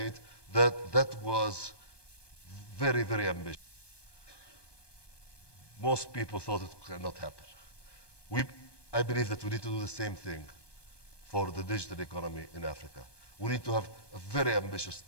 That was very, very ambitious. Most people thought it cannot happen. I believe that we need to do the same thing for the digital economy in Africa. We need to have a very ambitious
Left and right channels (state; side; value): late; right; 1.2 ms